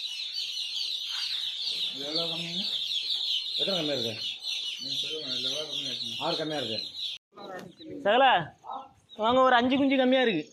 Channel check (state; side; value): identical; both; correlation 1.00